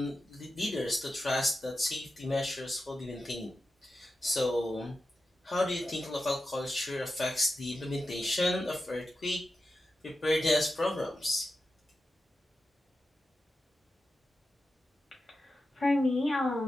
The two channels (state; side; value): normal; both; correlation 0.91